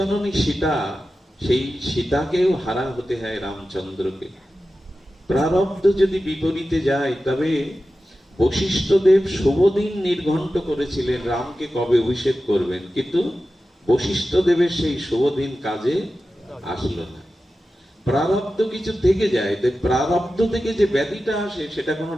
সীতা, সেই সীতাকেও হারা হতে হয় রামচন্দ্রকে। প্রারব্ধ যদি বিপরীতে যায়, তবে বশিষ্ঠদেব শুভদিন নির্ঘণ্ট করেছিলেন রামকে কবে অভিষেক করবেন, কিন্তু বশিষ্ঠদেবের সেই শুভদিন কাজে আসলো না। প্রারব্ধ কিছু থেকে যায়, তাই প্রারব্ধ থেকে যে ব্যাধিটা আসে সেটা কোনো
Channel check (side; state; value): both; normal; correlation 0.93